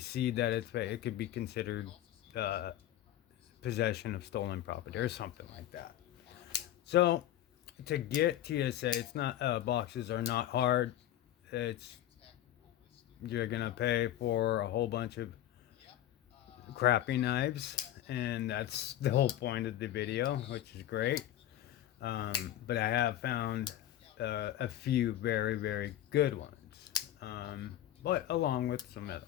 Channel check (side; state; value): right; quieter; 12.7 dB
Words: that it's fake. It could be considered possession of stolen property or something like that. So to get TSA, it's not boxes are not hard. It's You're gonna pay for a whole bunch of crappy knives, and that's the whole point of the video, which is great. But I have found a few very good ones, but along with some other